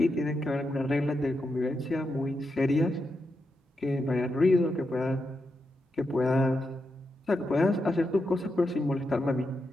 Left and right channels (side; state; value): both; normal; correlation 0.86